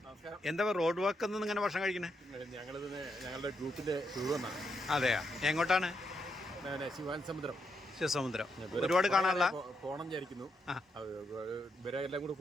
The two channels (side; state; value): both; normal; correlation 0.81